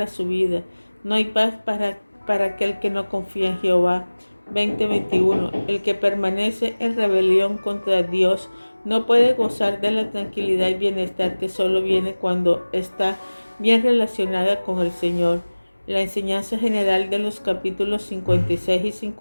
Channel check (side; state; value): both; inverted; correlation -1.00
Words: a su vida. No hay paz para aquel que no confía en Jehová. 20:21. El que permanece en rebelión contra Dios no puede gozar de la tranquilidad y bienestar que solo viene cuando está bien relacionada con el Señor. La enseñanza general de los capítulos 56 y